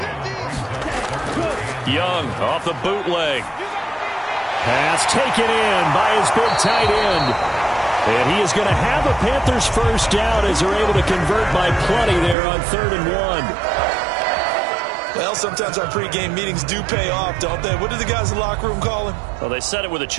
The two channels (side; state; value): left; drops out; at 12.4 s